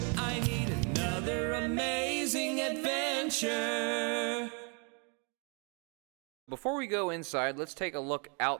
I need another amazing adventure. Before we go inside, let's take a look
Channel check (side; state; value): left; quieter; 36.6 dB